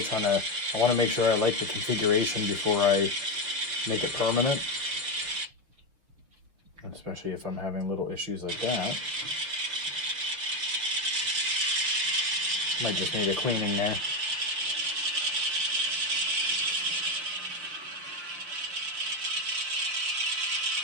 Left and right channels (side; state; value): left; late; 6.6 ms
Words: trying to, I want to make sure I like the configuration before I make it permanent. Especially if I'm having little issues like that. Might just need a cleaning there.